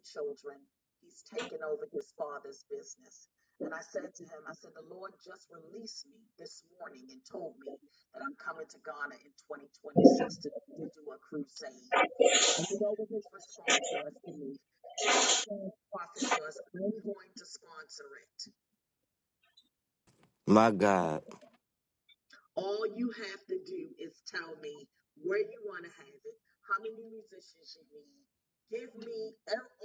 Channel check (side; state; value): both; identical; correlation 1.00